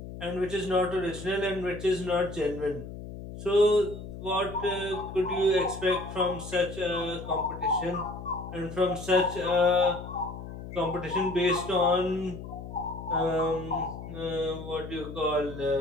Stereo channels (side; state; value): left; noise; hum, 11 dB below the sound